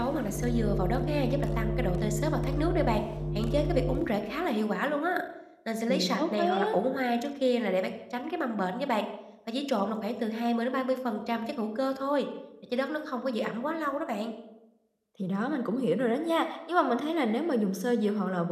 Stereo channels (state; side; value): identical; both; correlation 1.00